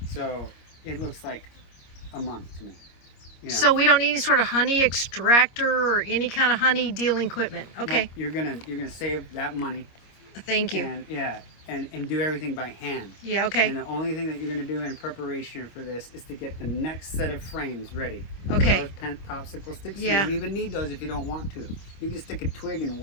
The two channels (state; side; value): late; right; 25 ms